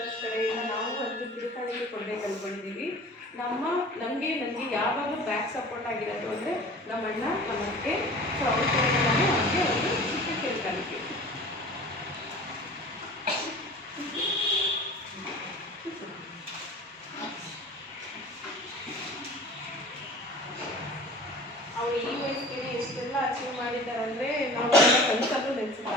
ಕಡೆಯಿಂದ ನಾವು ಒಂದು ತಿರುಕಾಣಿಕೆ ಕೊಂಡೇ ಕಲ್ಕೊಂಡಿದ್ದೀವಿ. ನನಗೆ ಯಾವಾಗ ಬ್ಯಾಕ್ ಸಪೋರ್ಟ್ ಆಗಿರೋದು ಅಂದರೆ ನಮ್ಮ ಅಣ್ಣ, ನಮ್ಮ ಅತ್ತೆ, ಸೊ ಅವ್ರ ಕಡೆಯಿಂದ ನಾನು ಅವ್ರಿಗೆ ಒಂದು ಚಿಕ್ಕ ತಿರುಕಾಣಿಕೆ. ಅವರು ಈ ವಯಸ್ಸಿಗೆ ಎಷ್ಟೆಲ್ಲ ಅಚೀವ್ ಮಾಡಿದ್ದಾರೆ ಅಂದರೆ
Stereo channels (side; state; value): both; normal; correlation 0.41